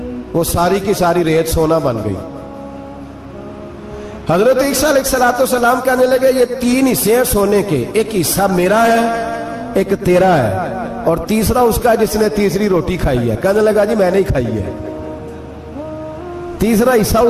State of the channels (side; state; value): both; identical; correlation 1.00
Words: वो सारी की सारी रेत सोना बन गई। हजरत ईसा अलैहिस्सलाम कहने लगे ये 3 हिस्से हैं सोने के, एक हिस्सा मेरा है, एक तेरा है, और तीसरा उसका जिसने तीसरी रोटी खाई है। कहने लगा जी मैंने ही खाई है। तीसरा हिस्सा